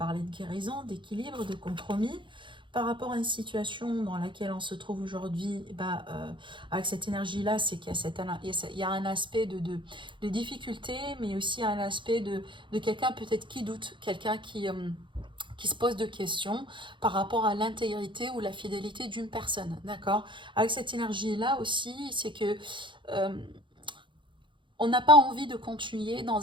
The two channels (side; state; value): left; late; 0.23 ms